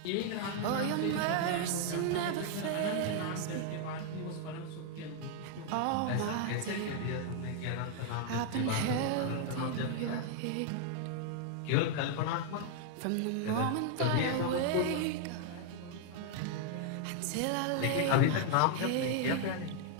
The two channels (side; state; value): both; different; correlation 0.00